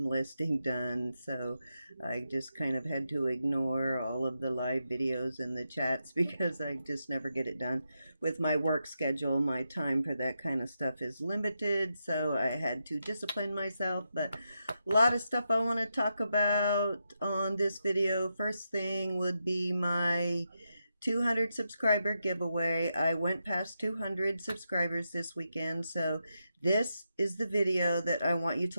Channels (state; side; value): inverted; both; correlation -0.86